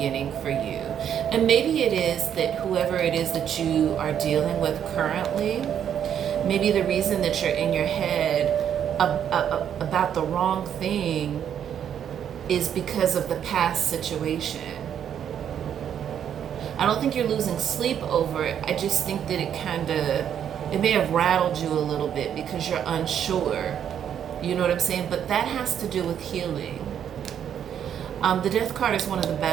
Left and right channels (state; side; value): quieter; left; 9.1 dB